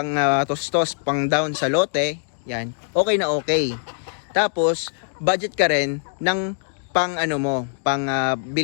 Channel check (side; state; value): right; silent; digital silence